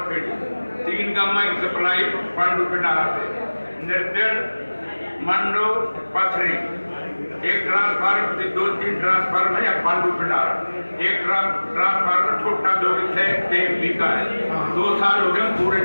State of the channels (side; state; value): both; inverted; correlation -1.00